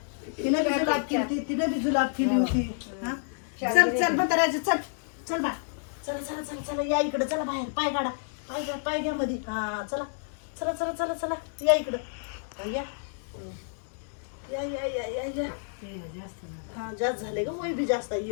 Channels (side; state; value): right; silent; digital silence